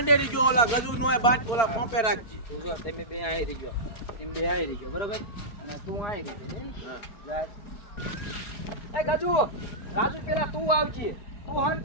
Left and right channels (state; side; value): late; right; 4.4 ms